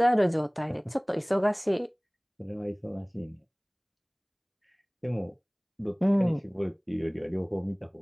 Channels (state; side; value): identical; both; correlation 1.00